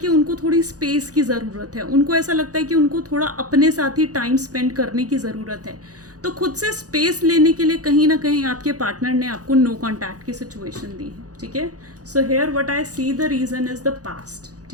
उनको थोड़ी स्पेस की ज़रूरत है, उनको ऐसा लगता है कि उनको थोड़ा अपने साथ ही टाइम स्पेंड करने की ज़रूरत है। तो खुद से स्पेस लेने के लिए कहीं ना कहीं आपके पार्टनर ने आपको नो कॉन्टैक्ट की सिचुएशन दी है, ठीक है। So here what I see the reason is the past,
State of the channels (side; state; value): left; late; 0.67 ms